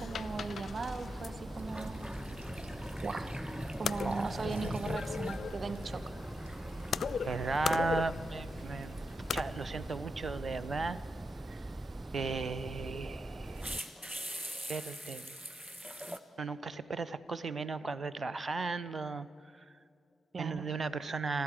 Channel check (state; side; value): normal; both; correlation 0.85